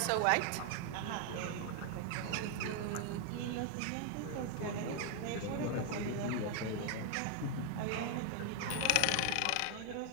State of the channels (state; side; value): different; both; correlation 0.01